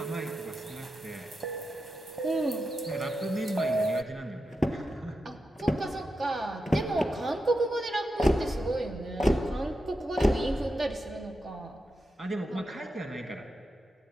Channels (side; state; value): both; normal; correlation 0.88